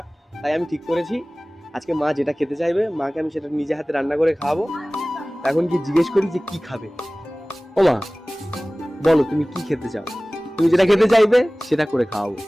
তাই আমি ঠিক করেছি আজকে মা যেটা খেতে চাইবে মাকে আমি সেটা নিজে হাতে রান্না করে খাওয়াবো। এখন কি জিজ্ঞেস করি যে কি খাবে। ও মা বলো তুমি কি খেতে চাও, তুমি যেটা খেতে চাইবে সেটা করে খাওয়াবো।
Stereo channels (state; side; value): normal; both; correlation 0.98